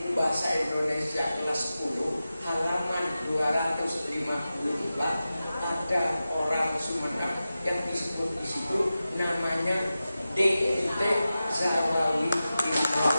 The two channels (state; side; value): inverted; both; correlation -0.94